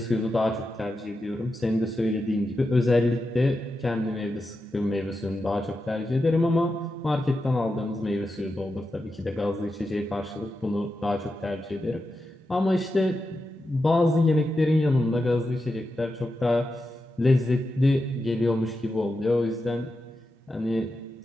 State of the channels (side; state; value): both; normal; correlation 0.89